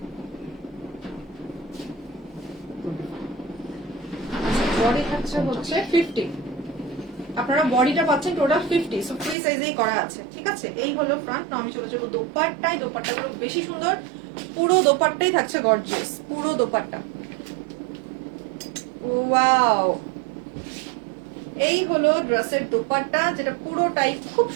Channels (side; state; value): left; drops out; at 9.3 s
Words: বডি থাকছে হচ্ছে 50, আপনারা বডিটা পাচ্ছেন টোটাল 50, সো ফ্রি সাইজেই করা আছে। ঠিক আছে, এই হলো ফ্রন্ট। আমি চলে যাবো দোপাট্টায়। দোপাট্টাগুলো বেশি সুন্দর, পুরো দোপাট্টাই থাকছে গর্জিয়াস, পুরো দোপাট্টা। ওয়াও, এই হলো ড্রেসের দোপাট্টা, যেটা পুরোটাই খুব